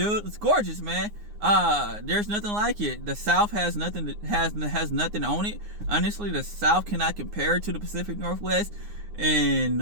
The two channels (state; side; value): late; left; 9.7 ms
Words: It's gorgeous, man. There's nothing like it. The South has nothing has nothing on it. Honestly, the South cannot compare to the Pacific Northwest in